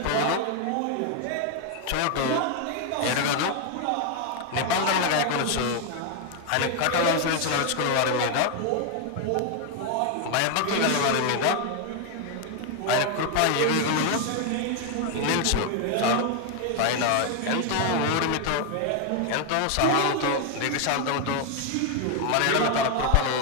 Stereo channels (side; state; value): both; different; correlation 0.01